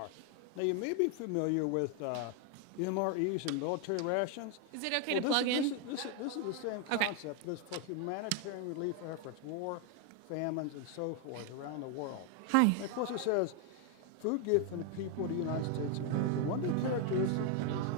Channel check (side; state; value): both; different; correlation 0.01